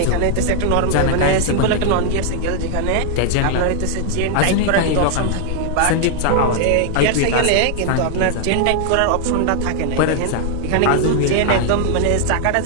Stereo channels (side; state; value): both; different; correlation 0.00